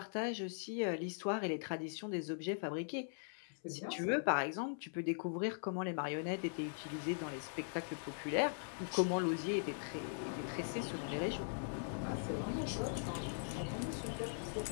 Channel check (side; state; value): right; silent; 51 dB below the other